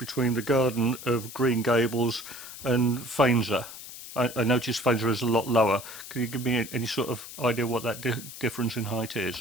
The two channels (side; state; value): left; noise; hiss, 13 dB below the sound